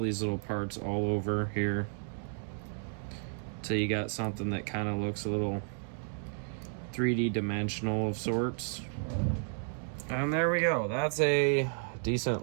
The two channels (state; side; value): silent; left; digital silence